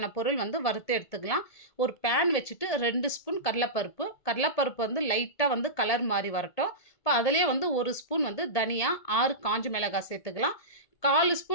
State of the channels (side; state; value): right; late; 1.8 ms